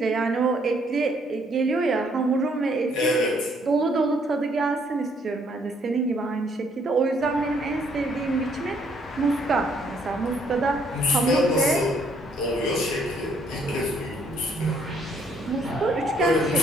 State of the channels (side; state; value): both; normal; correlation 0.67